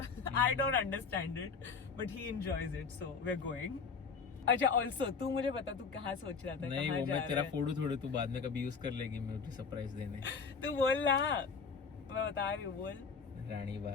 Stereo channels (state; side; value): quieter; right; 5.3 dB